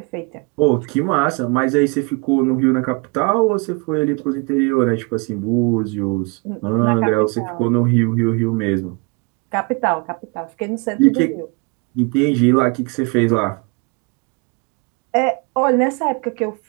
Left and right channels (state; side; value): quieter; left; 30.1 dB